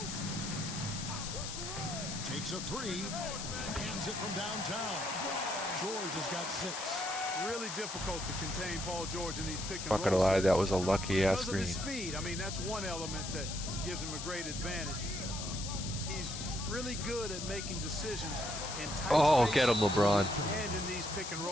Takes a 3. Hands it from downtown. George has got 6. Really difficult to contain Paul George in these pick and Not gonna roll lie, sets. that was a lucky ass Because of his screen. speed. I mean, that's one element that gives him a great advantage. He's really good at making decisions in tight Oh, spaces get him, LeBron. and in these pick and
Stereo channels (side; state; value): left; noise; hiss, 6 dB below the sound